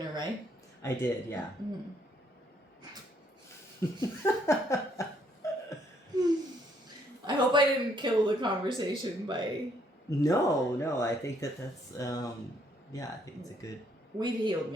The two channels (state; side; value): normal; both; correlation 0.69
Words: right? I did, yeah. I hope I didn't kill the conversation by... No, I think that's, I think it's a good... We've healed